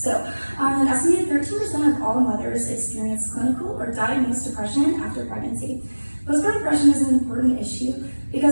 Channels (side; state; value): both; inverted; correlation -1.00